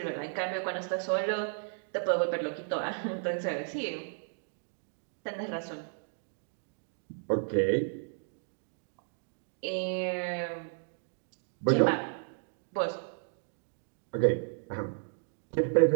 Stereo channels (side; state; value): left; silent; digital silence